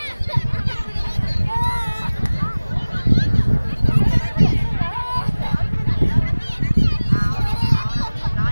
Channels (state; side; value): inverted; both; correlation -1.00